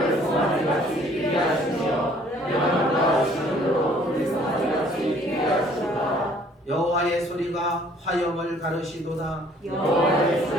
송아지같이 피게 하시며 레바논과 시온으로 그 송아지같이 피게 하시도다. 여호와의 소리가 화염을 가르시도다. 여호와의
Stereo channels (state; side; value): normal; both; correlation 0.58